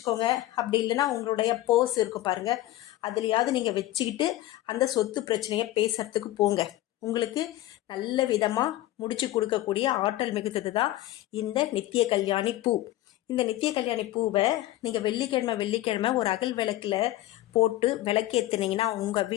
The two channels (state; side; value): quieter; right; 15.5 dB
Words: அப்படி இல்லைன்னா உங்களுடைய பர்ஸ் இருக்கும் பாருங்கள், அதுலேயாவது நீங்கள் வச்சுக்கிட்டு அந்த சொத்து பிரச்சனையை பேசுறதுக்கு போங்க. உங்களுக்கு நல்ல விதமாக முடிச்சு கொடுக்கக்கூடிய ஆற்றல் மிகுந்தது தான் இந்த நித்திய கல்யாணி பூ. இந்த நித்திய கல்யாணி பூவை நீங்கள் வெள்ளிக்கிழமை ஒரு அகல் விளக்கில் போட்டு விளக்கேற்றுனீங்கன்னா உங்கள்